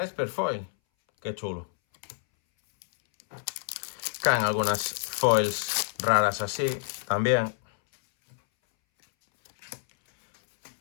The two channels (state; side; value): silent; right; 60 dB below the other